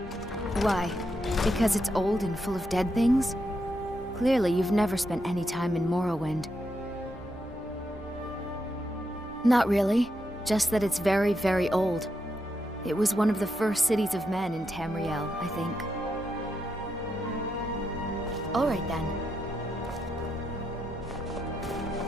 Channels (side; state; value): both; normal; correlation 0.82